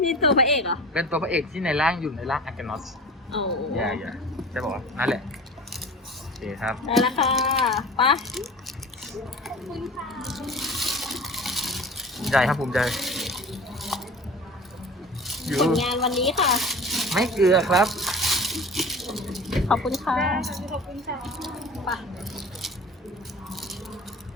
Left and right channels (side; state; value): both; normal; correlation 0.38